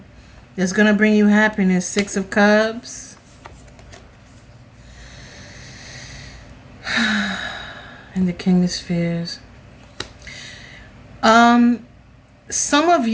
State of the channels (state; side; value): identical; both; correlation 1.00